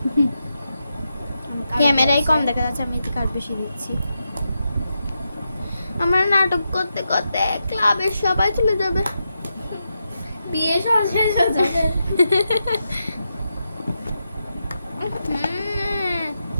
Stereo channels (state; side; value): inverted; both; correlation -0.87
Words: ক্যামেরায় কম দেখা যাচ্ছে, আমি এদিকে আর বেশি দিচ্ছি। আমরা নাটক করতে করতে ক্লাবের সবাই চলে যাবে। বিয়ে সব শেষ হয়ে যাবে।